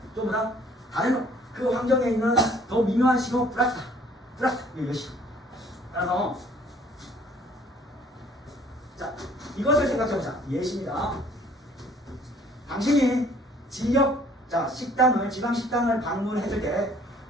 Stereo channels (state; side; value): normal; both; correlation 0.57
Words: 또 뭐다? 다른 그 환경에 있는 더 미묘한 신호 플러스 이것이. 따라서 자, 이것을 생각해보자. 예시입니다. 당신이 지역 지방 식당을 방문했을 때